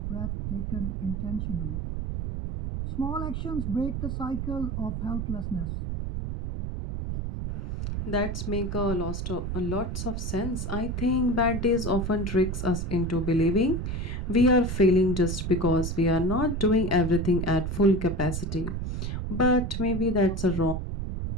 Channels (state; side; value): noise; right; rumble, 3 dB below the sound